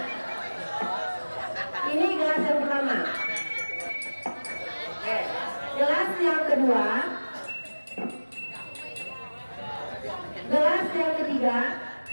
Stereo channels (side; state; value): both; inverted; correlation -1.00